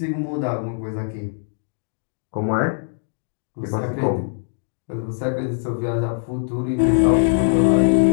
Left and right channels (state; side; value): silent; right; digital silence